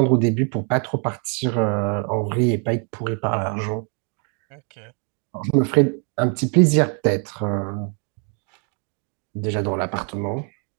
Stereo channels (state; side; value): quieter; left; 39.8 dB